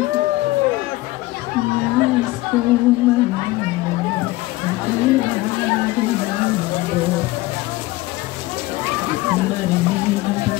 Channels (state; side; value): quieter; right; 19.1 dB